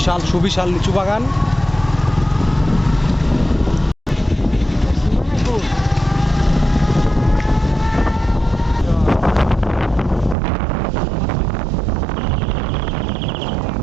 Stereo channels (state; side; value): drops out; left; at 10.4 s